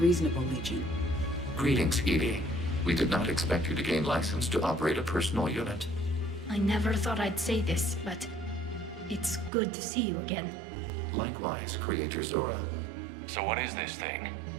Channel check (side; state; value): left; drops out; at 9.5 s